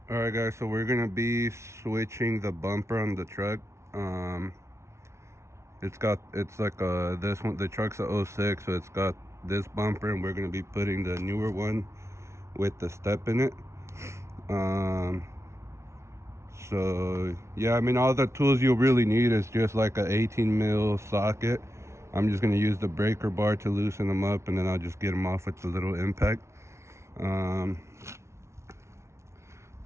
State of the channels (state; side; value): late; left; 0.13 ms